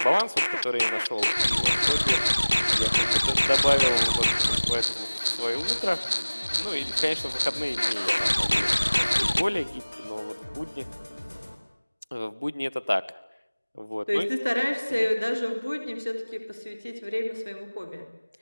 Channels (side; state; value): both; inverted; correlation -1.00